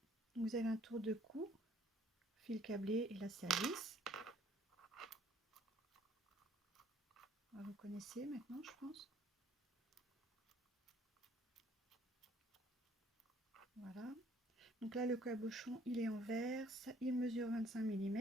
Vous avez un tour de cou, fil câblé et là c'est à vis. Vous connaissez maintenant, je pense. Voilà. Donc là le cabochon il est en verre, il mesure 25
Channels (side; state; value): both; normal; correlation 0.60